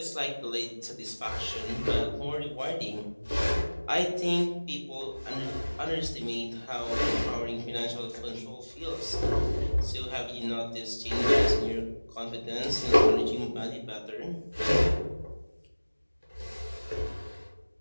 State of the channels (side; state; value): both; inverted; correlation -1.00